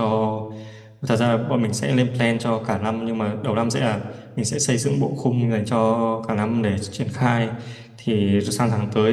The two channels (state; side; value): identical; both; correlation 1.00